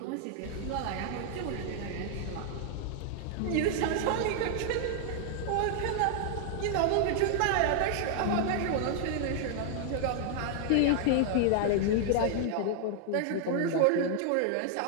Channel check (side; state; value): both; different; correlation -0.01